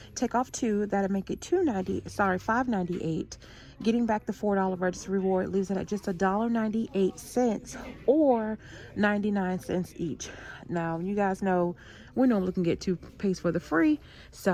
Take off 2, that'll make it $5.98. Getting back the $4 register reward leaves it at just $1.98 or 99 cents each. Now, you guys know we normally can get toothpaste for the free,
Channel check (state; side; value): identical; both; correlation 1.00